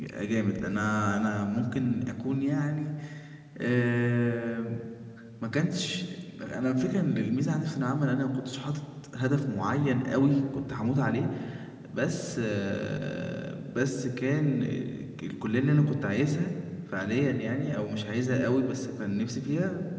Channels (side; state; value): both; identical; correlation 1.00